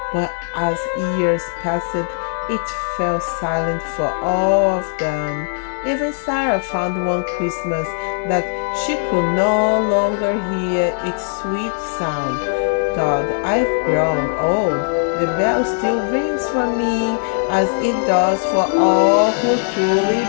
but as years passed, it fell silent for all of them. Even Sarah found one Christmas that she could no longer hear its sweet sound. God, I've grown old. The bell still rings for me as it does for all who truly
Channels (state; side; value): silent; right; 60 dB below the other